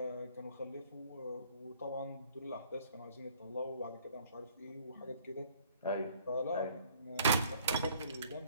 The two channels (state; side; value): inverted; both; correlation -0.57